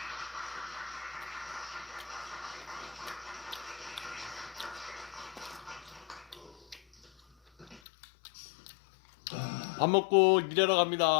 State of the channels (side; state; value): right; drops out; at 7.8 s